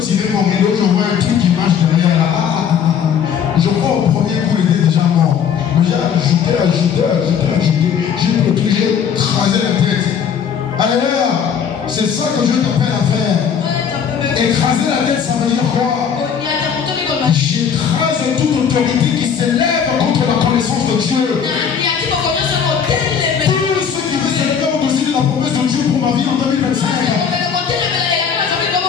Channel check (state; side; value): quieter; right; 7.4 dB